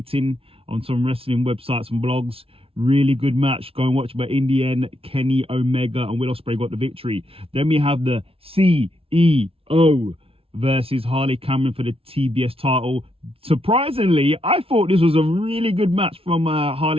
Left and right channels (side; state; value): left; late; 0.27 ms